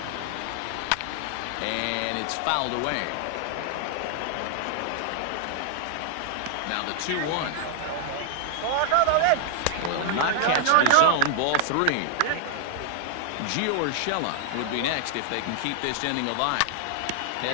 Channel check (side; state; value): both; different; correlation 0.00